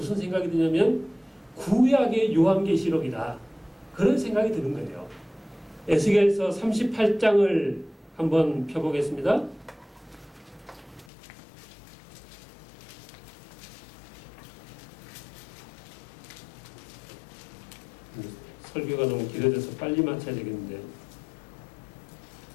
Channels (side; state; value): right; drops out; at 11.1 s